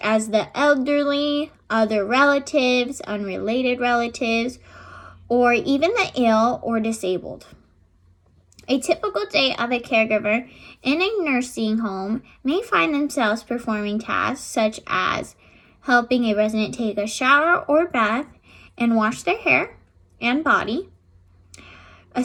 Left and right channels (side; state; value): both; identical; correlation 1.00